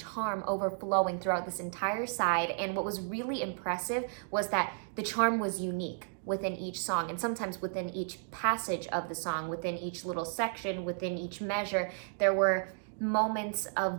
overflowing throughout this entire side, and what was really impressive was that the charm was unique within each song, and sometimes within each passage of the song, within each little section, within each measure, there were moments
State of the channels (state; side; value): silent; left; 56 dB below the other